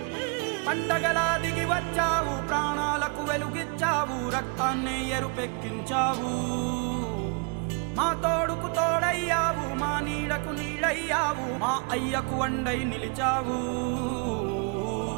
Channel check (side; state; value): left; quieter; 34.9 dB